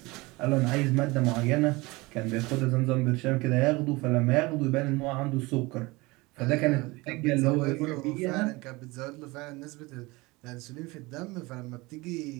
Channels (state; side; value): quieter; left; 23.1 dB